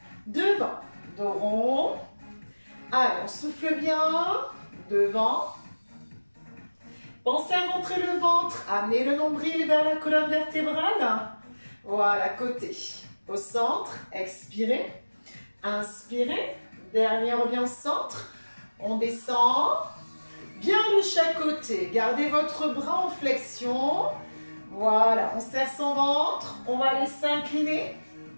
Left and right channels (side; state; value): both; inverted; correlation -1.00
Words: Devant. Dos rond. Allez, on souffle bien. Devant. Pensez à rentrer le ventre, amenez le nombril vers la colonne vertébrale. Voilà, côté. Au centre, expirez. Inspirez. Dernier, on revient au centre. On descend. Bien de chaque côté. Gardez votre bras en flexion. Voilà, on serre son ventre. On va aller s'incliner